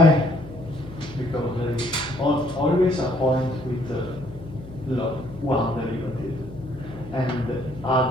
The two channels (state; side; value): noise; left; hum, 16 dB below the sound